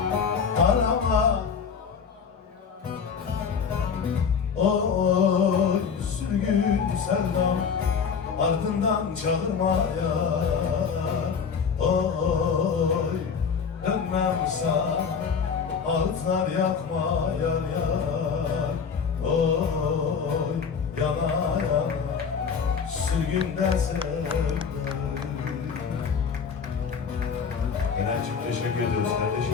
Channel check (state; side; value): quieter; right; 6.3 dB